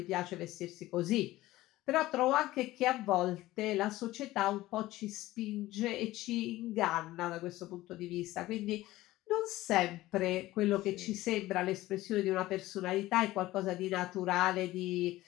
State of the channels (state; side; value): quieter; right; 16.9 dB